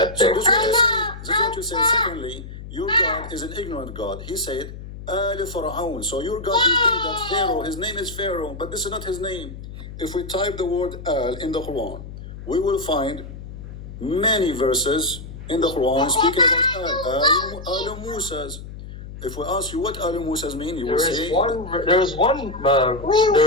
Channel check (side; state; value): left; noise; hum, 12 dB below the sound